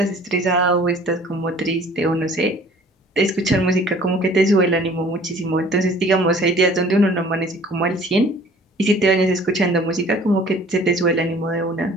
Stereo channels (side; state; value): both; normal; correlation 0.51